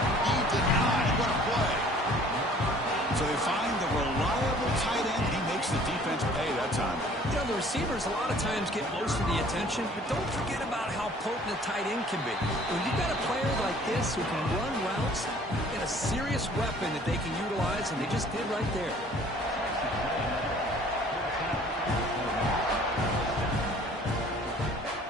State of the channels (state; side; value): normal; both; correlation 0.53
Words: be denied. What a play. So they find the reliable tight end. He makes the defense pay that time. You know, the receivers a lot of times get most of the attention, but don't forget about how potent a tight end can be. When you've got a player like this who can run routes, get a serious weapon that they can utilize, and they just did right there.